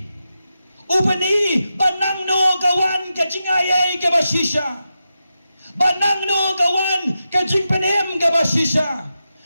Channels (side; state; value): both; inverted; correlation -0.89